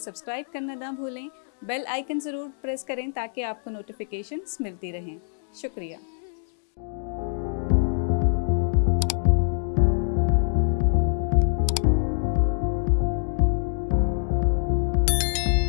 کرنا نہ بھولیں۔ بیل آئیکن ضرور پریس کریں تاکہ آپ کو نوٹیفیکیشنز ملتی رہیں۔ شکریہ۔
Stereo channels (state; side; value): silent; right; digital silence